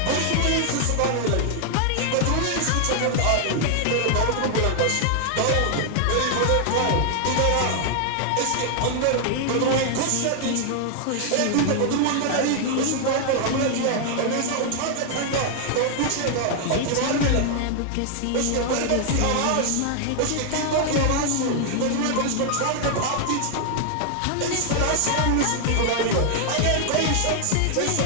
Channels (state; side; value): different; both; correlation 0.00